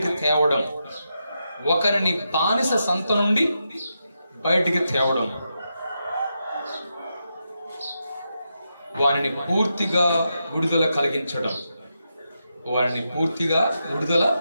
తేవడం, ఒకరిని బానిస సంత నుండి బయటికి తేవడం, వారిని పూర్తిగా విడుదల కలిగించడం, వారిని పూర్తిగా విడుదల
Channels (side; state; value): both; inverted; correlation -0.85